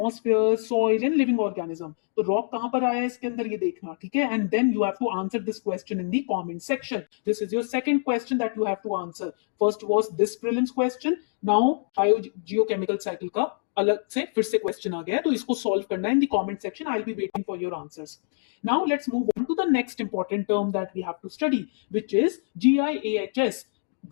soil, and living organism. तो rock कहां पर आया है इसके अंदर ये देखना, ठीक है. And then you have to answer this question in the comment section. This is your second question that you have to answer. First was this prelims question. Now biogeochemical cycle का अलग से फिर से क्वेश्चन आ गया है, तो इसको solve करना है इन the comment section. I will be waiting for your answers. Now let's move on to the next important term that we have to study, which is GIAHS,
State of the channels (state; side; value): silent; right; digital silence